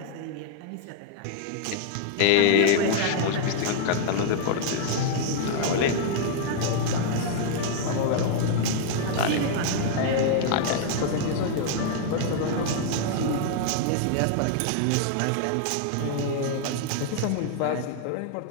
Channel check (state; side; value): different; both; correlation -0.01